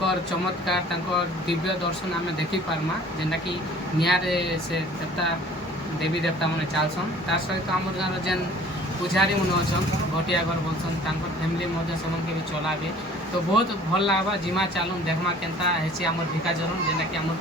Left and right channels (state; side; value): normal; both; correlation 0.50